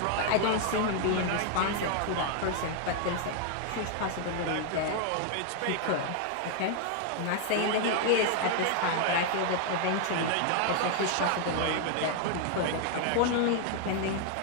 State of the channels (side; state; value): both; different; correlation 0.00